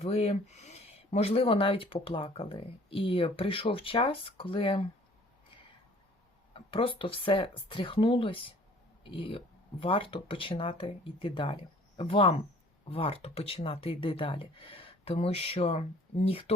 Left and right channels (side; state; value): both; normal; correlation 0.53